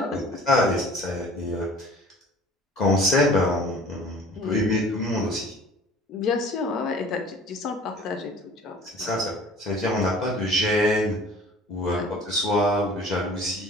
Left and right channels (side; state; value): both; normal; correlation 0.48